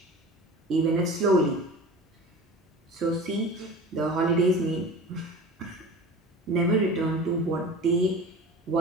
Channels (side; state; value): both; normal; correlation 0.36